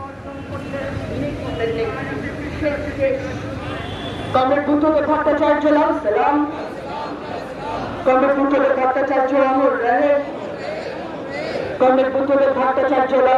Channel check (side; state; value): both; identical; correlation 1.00